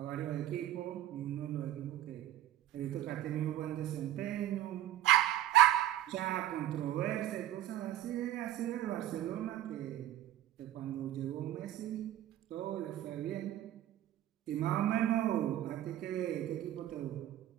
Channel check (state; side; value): quieter; left; 13.2 dB